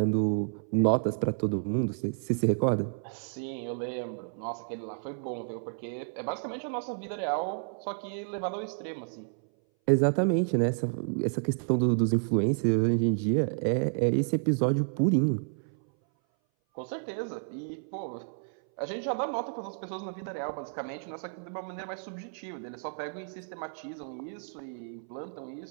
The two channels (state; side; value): silent; left; 57 dB below the other